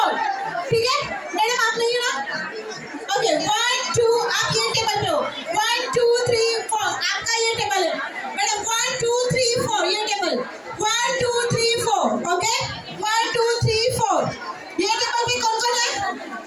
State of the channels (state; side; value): identical; both; correlation 1.00